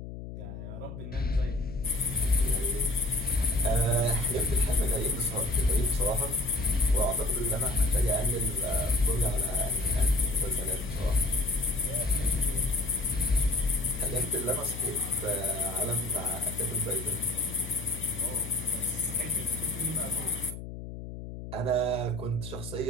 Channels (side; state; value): left; noise; hum, 10 dB below the sound